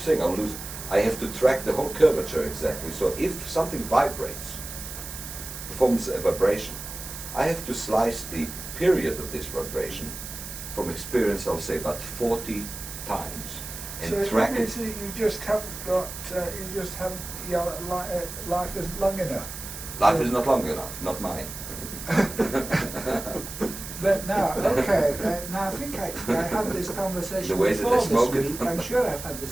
I have to track the whole curvature exactly. So if something vibrates, performs a vibration, I have to slice the period of this vibration from experience, I'll say about 40 times. And so track it. So you just haven't got, life isn't long enough. Life is not long enough, not mine. But now, okay, now I think I had this conversation The way that before they smoke this it. week. I'm sure I've had this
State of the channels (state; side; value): noise; right; hiss, 10 dB below the sound